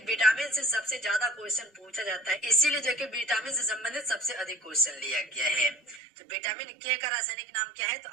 विटामिन से सबसे ज्यादा क्वेश्चन पूछा जाता है, इसीलिए जो है कि विटामिन से संबंधित सबसे अधिक क्वेश्चन लिया गया है। तो विटामिन के का रासायनिक नाम क्या है, तो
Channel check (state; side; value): drops out; left; at 6.0 s